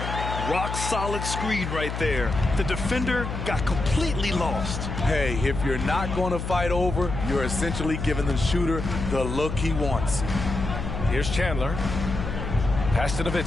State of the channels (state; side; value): noise; left; hum, 5 dB below the sound